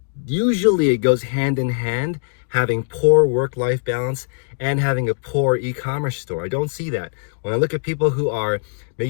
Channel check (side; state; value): right; silent; digital silence